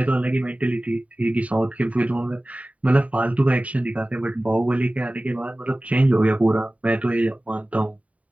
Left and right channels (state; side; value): late; left; 0.068 ms